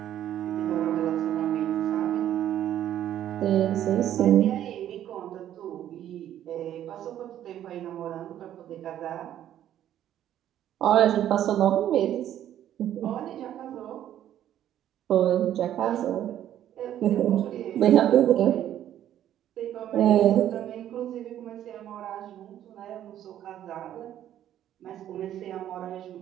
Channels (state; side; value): quieter; left; 11.4 dB